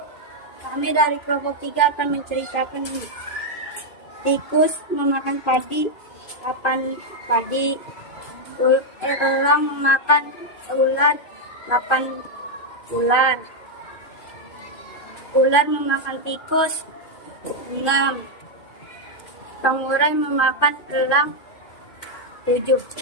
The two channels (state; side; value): late; right; 2.5 ms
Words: Kami dari kelompok 3 akan menceritakan ini. Tikus memakan padi, 8 padi. Elang memakan ular, 8 ular. Ular memakan tikus, 6. Pengurai memakan elang, 7.